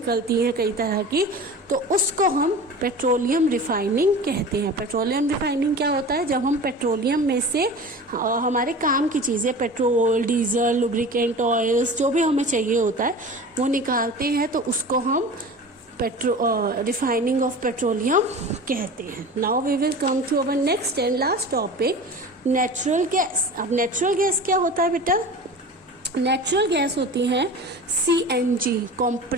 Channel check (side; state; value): both; normal; correlation 0.35